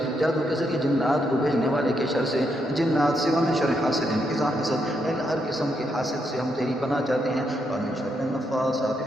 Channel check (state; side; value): normal; both; correlation 0.79